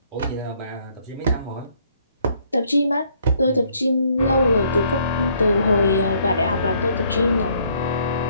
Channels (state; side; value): inverted; both; correlation -0.65